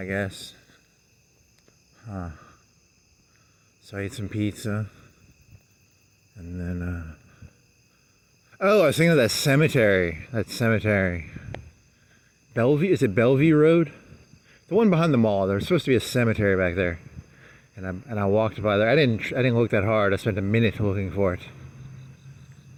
guess. So I ate some pizza. And then, oh, I was thinking of that cemetery. Bellevue, is it Bellevue Road? The one behind the mall. There's supposed to be a cemetery back there. And I walked by there. I didn't look that hard. I spent a minute looking for it.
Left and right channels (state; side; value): identical; both; correlation 1.00